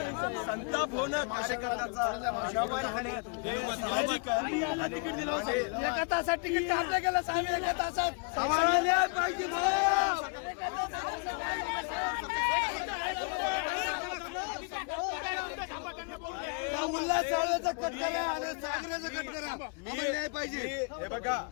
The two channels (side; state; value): right; quieter; 36.3 dB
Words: संताप होणं कार्यकर्त्याचा अनावर होणे हे साहजिक आहे। एका तासात तिकीट काढलं गेलं, साडेनऊ तासात पाहिजे। उल्हास चाळव्याचा कट करा आणि सागऱ्याचा कट करा, न्याय पाहिजे। हे